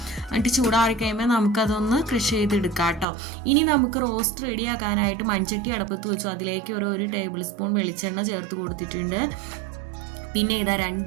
എന്നിട്ട് ചൂടാറി കഴിയുമ്പോൾ നമുക്കതൊന്ന് ക്രഷ് ചെയ്തെടുക്കാം കേട്ടോ. ഇനി നമുക്ക് റോസ്റ്റ് റെഡിയാക്കാനായിട്ട് മൺചട്ടി അടപ്പത്ത് വെച്ചു. അതിലേക്ക് ഒരു ടേബിൾ സ്പൂൺ വെളിച്ചെണ്ണ ചേർത്ത് കൊടുത്തിട്ടുണ്ട്. പിന്നെ ഇതാ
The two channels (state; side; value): drops out; left; at 3.1 s